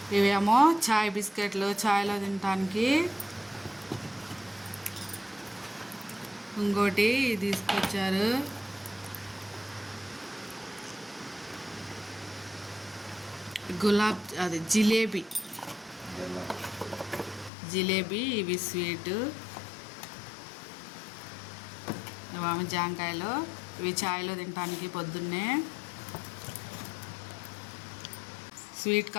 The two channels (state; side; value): drops out; right; at 17.5 s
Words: ఇవేమో చాయ్ బిస్కెట్లు, చాయ్లో తినడానికి. ఇంకోటి తీసుకొచ్చారు. అది జిలేబీ ఇవి స్వీట్. ఇవి జాంకాయలు, ఇవి చాయ్లో తినడానికి. పొద్దున్నే స్వీట్